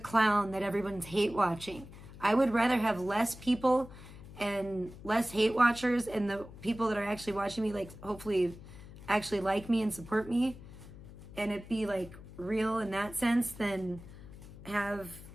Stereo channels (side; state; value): left; noise; hum, 16 dB below the sound